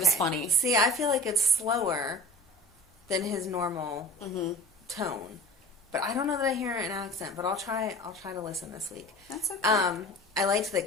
funny. See, I feel like it's slower than his normal tone. But I don't know that I hear an accent, but I'll try to listen this week. That's okay. I liked that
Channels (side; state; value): both; normal; correlation 0.37